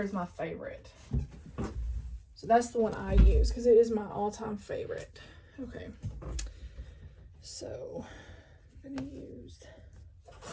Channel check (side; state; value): both; identical; correlation 1.00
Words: is my favorite. So that's the one I use because it is my all-time favorite. Okay. So I'm going to use...